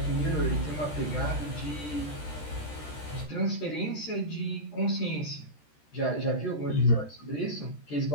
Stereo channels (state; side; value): late; right; 13 ms